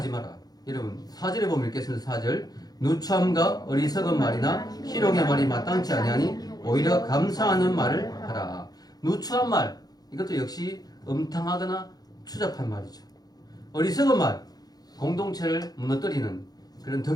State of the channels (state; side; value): late; right; 0.19 ms